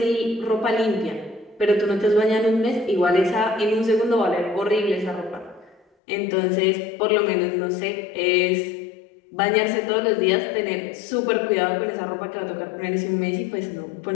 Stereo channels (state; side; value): drops out; right; at 5.8 s